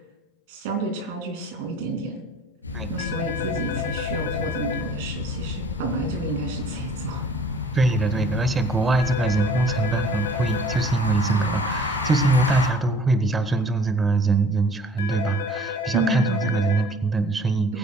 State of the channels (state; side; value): normal; both; correlation 0.51